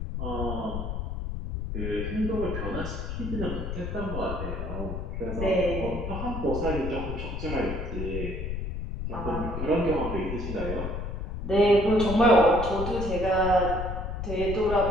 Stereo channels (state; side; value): noise; left; rumble, 4 dB below the sound